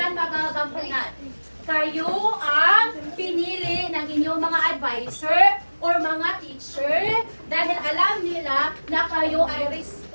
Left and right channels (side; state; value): both; inverted; correlation -1.00